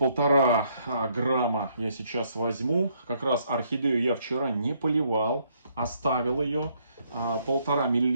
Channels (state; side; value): inverted; both; correlation -0.69